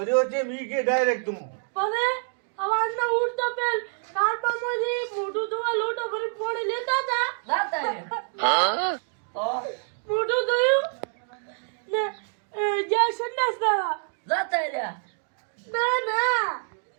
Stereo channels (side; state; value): left; silent; 61 dB below the other